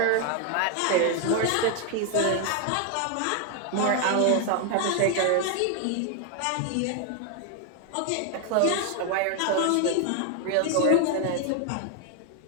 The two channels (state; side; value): different; both; correlation 0.01